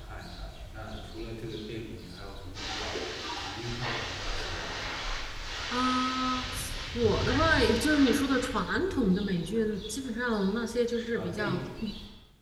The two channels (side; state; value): both; identical; correlation 1.00